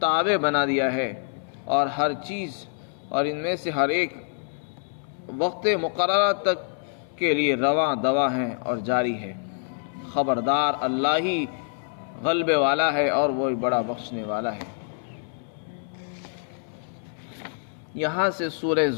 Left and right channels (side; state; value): right; silent; 61 dB below the other